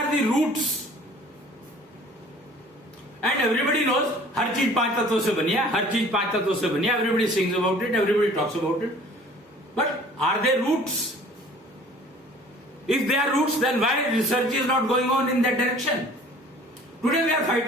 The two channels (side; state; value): both; normal; correlation 0.50